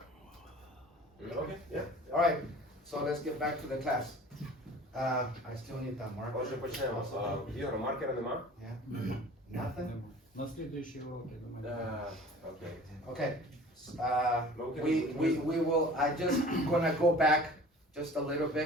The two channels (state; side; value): normal; both; correlation 0.45